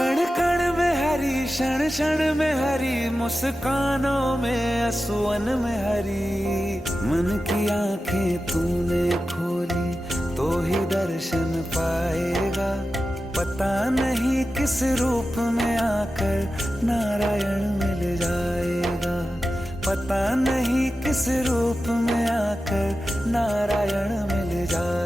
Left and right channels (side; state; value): both; normal; correlation 0.93